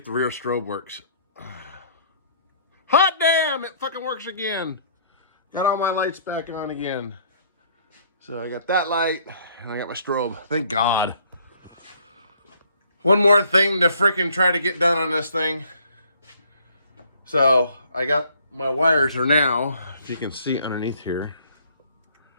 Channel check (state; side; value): inverted; both; correlation -0.61